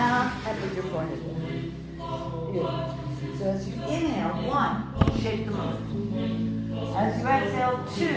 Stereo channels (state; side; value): identical; both; correlation 1.00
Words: and put your forehead down. Beautiful. So as you inhale, 1, shake the moon. As you exhale,